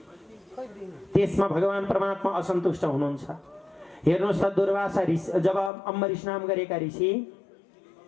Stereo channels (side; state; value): right; drops out; at 5.7 s